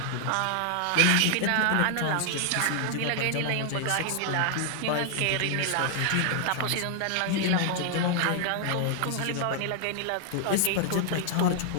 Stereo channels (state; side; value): different; both; correlation 0.00